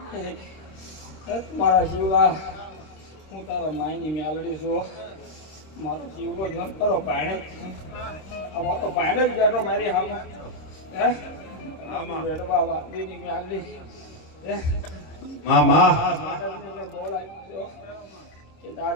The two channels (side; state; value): right; late; 26 ms